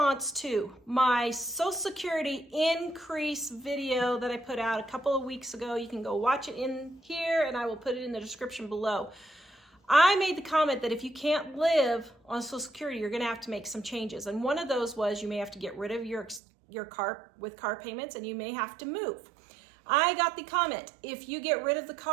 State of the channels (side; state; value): left; drops out; at 16.4 s